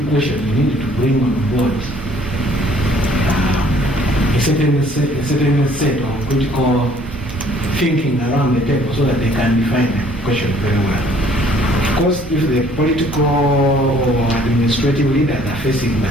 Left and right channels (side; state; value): both; normal; correlation 0.59